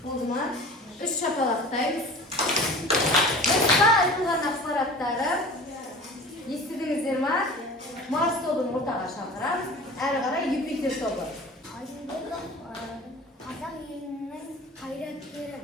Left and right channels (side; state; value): both; normal; correlation 0.40